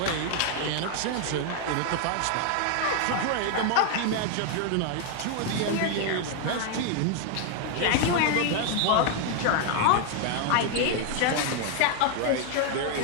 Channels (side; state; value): both; different; correlation 0.00